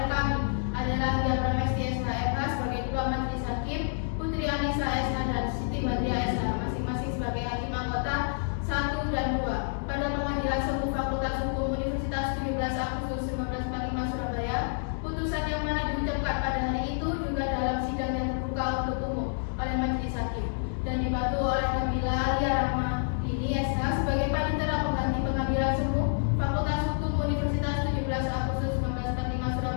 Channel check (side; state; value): right; silent; digital silence